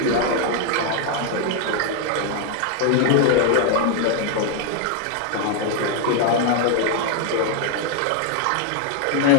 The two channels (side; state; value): both; different; correlation 0.00